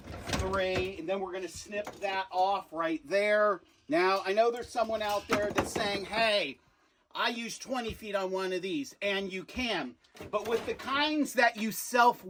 and then we're gonna snip that off right there. Now, I know there's someone out there that's saying, hey, I use 20 feet on one of these, and you can. But with the kinds that you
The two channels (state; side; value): identical; both; correlation 1.00